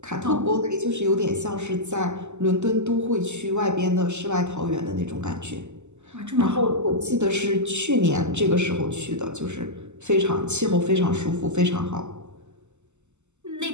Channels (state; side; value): late; left; 0.83 ms